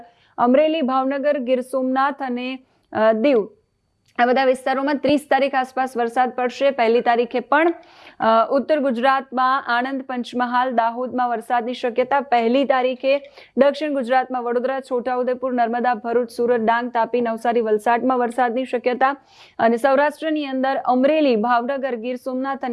અમરેલી, ભાવનગર, ગીર સોમનાથ અને દીવ આ બધા વિસ્તારોમાં 30 તારીખ આસપાસ વરસાદ પડશે. 1લી તારીખે પણ ઉત્તર ગુજરાતમાં આણંદ, પંચમહાલ, દાહોદમાં વરસાદની શક્યતા. 1લી તારીખે દક્ષિણ ગુજરાતમાં વડોદરા, છોટાઉદેપુર, નર્મદા, ભરૂચ, સુરત, ડાંગ, તાપી, નવસારી, વલસાડમાં વરસાદની શક્યતા. અને સૌરાષ્ટ્રની અંદર અમરેલી, ભાવનગર, ગીર સોમનાથ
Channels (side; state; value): both; identical; correlation 1.00